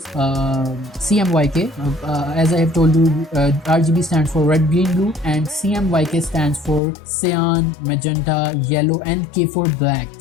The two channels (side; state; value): right; drops out; at 6.8 s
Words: CMYK. As I have told you, RGB stands for red, green, blue, and CMYK stands for cyan, magenta, yellow, and K for black.